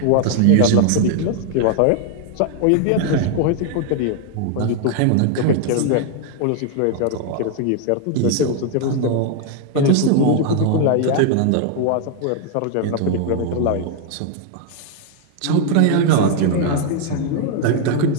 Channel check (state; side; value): different; both; correlation 0.00